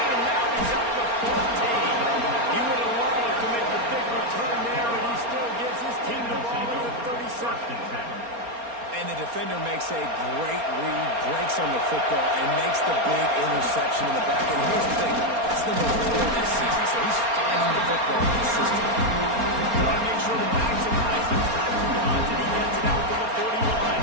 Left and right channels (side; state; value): left; late; 4.3 ms